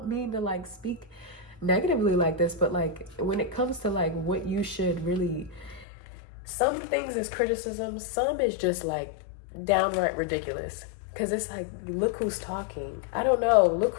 mean to like speak negatively like this, but like when it comes to like what you should really, some things is criticism, some is just like downright ridiculous. Because it's like, look who's talking. I don't know. Look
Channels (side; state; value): right; drops out; at 5.9 s